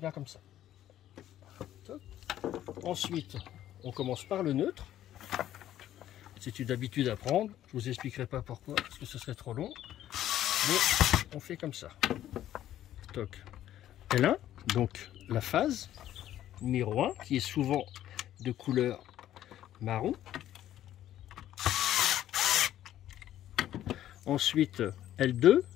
comme ça. Top. Ensuite, on commence par le neutre. C'est une habitude à prendre. Je vous expliquerai pas pourquoi, parce que ce serait trop long. Mais on fait comme ça. Toc. L1, donc la phase numéro 1, qui est souvent de couleur marron. Ensuite, L2,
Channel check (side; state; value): right; quieter; 12.3 dB